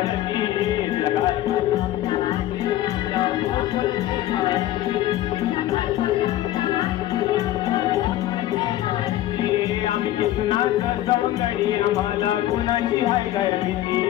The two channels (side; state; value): right; quieter; 14.0 dB